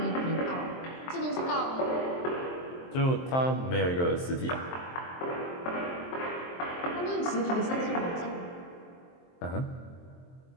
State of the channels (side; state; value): right; late; 23 ms